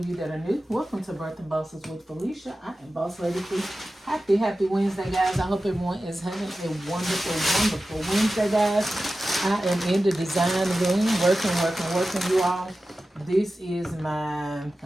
you that are new, welcome to Birthing Bosses with Felicia. I am Boss Lady Fee. Happy Wednesday, guys. I hope everyone is having a wonderful Wednesday, guys. I am in the design room, working, you all. This is I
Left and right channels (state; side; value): normal; both; correlation 0.94